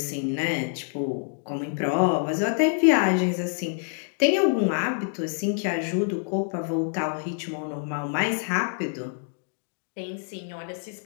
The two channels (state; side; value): silent; right; 61 dB below the other